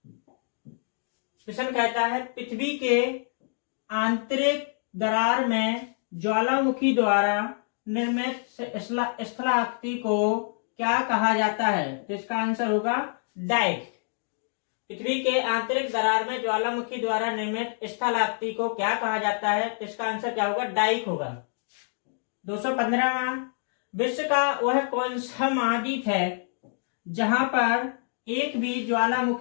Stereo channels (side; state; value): right; silent; 60 dB below the other